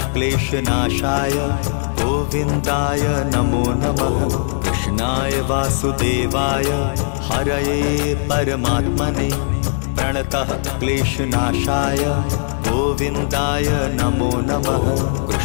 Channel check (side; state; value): right; silent; digital silence